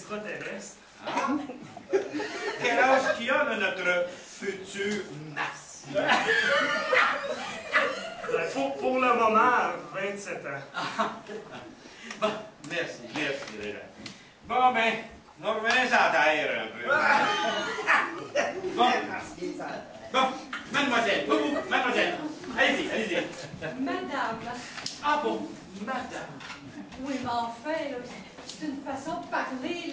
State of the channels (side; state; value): both; identical; correlation 1.00